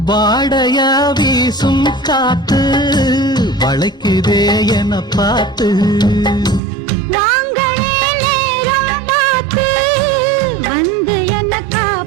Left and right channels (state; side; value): drops out; left; at 6.6 s